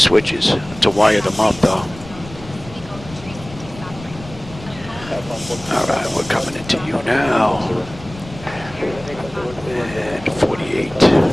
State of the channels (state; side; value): noise; left; rumble, 16 dB below the sound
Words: to wire them up though. All right, we're coming into you now. And 48.